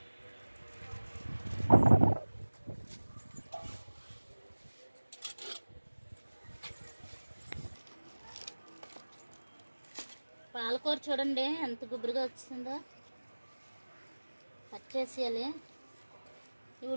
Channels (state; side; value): inverted; both; correlation -1.00